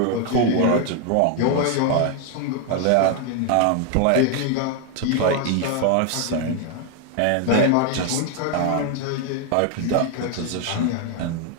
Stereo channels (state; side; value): different; both; correlation 0.01